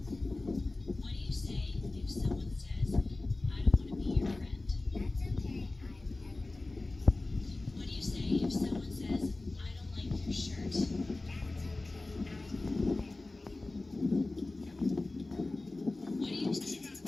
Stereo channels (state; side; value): quieter; right; 3.1 dB